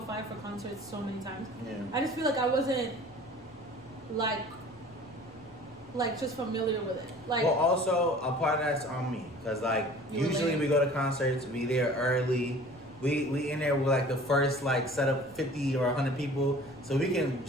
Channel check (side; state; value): both; normal; correlation 0.46